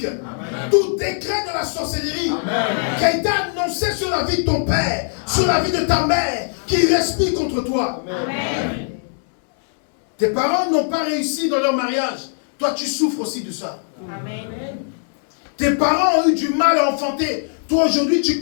tout décret de la sorcellerie qui a été annoncé sur la vie de ton père, sur la vie de ta mère, qui respire contre toi. Amen. Tes parents n'ont pas réussi dans leur mariage. Toi, tu souffres aussi de ça. Amen. Tes parents ont eu du mal à enfanter. Toi, aujourd'hui, tu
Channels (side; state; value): right; silent; digital silence